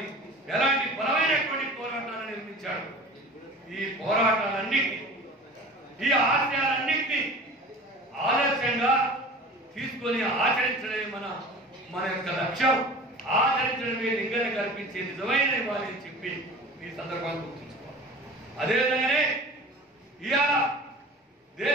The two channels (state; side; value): normal; both; correlation 0.39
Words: ఎలాంటి బలమైనటువంటి పోరాటాలను నిర్మించాడు. ఈ పోరాటాలన్నింటినీ, ఈ ఆశయాలన్నింటినీ ఆదర్శంగా తీసుకొని ఆచరించడమే మన యొక్క లక్ష్యం. ఆచరించడమే లింగన కల్పించే నిజమైన ఇవ్వాలి అని చెప్పి ఈ సందర్భాన్ని గుర్తుంచుకోవాలి. అదేవిధంగానే ఇవాళ